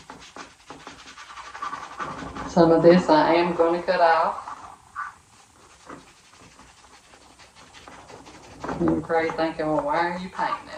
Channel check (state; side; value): identical; both; correlation 1.00